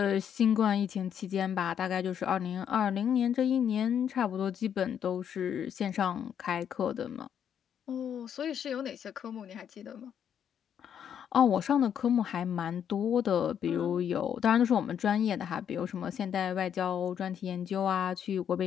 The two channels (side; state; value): right; quieter; 8.7 dB